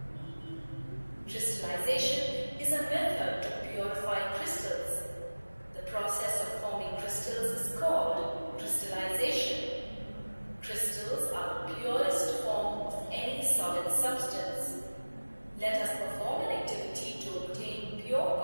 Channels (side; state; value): both; inverted; correlation -1.00